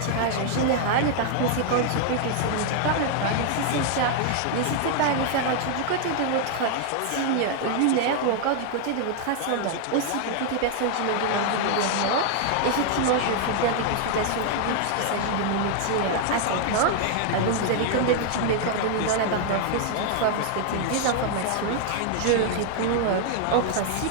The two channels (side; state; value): both; different; correlation 0.00